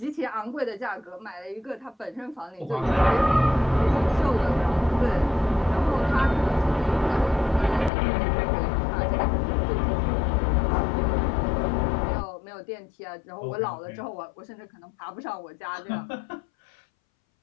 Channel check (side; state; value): right; drops out; at 7.9 s